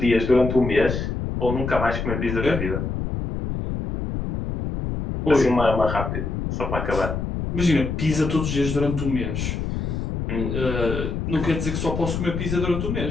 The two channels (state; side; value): noise; left; rumble, 3 dB below the sound